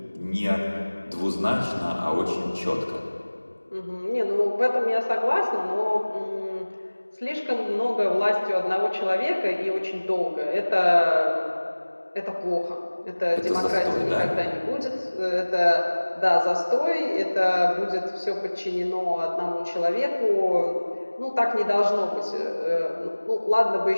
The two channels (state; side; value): inverted; both; correlation -1.00